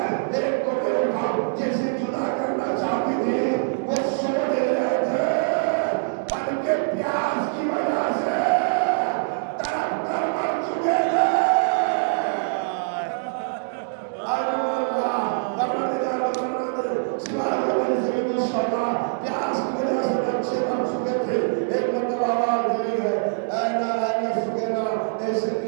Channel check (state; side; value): silent; left; digital silence